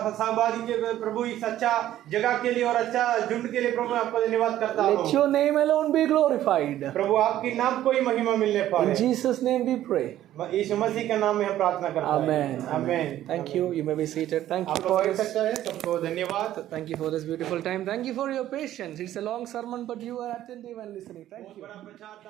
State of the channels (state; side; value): quieter; left; 12.9 dB